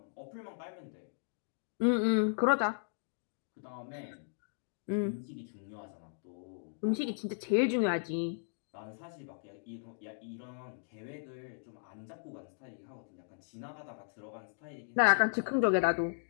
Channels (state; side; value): silent; right; digital silence